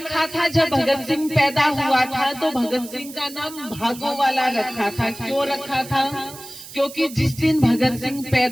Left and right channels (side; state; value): right; noise; hiss, 15 dB below the sound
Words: था। जब भगत सिंह पैदा हुआ था तो भगत सिंह का नाम भागो वाला रखा था। क्यों रखा था? क्योंकि जिस दिन भगत सिंह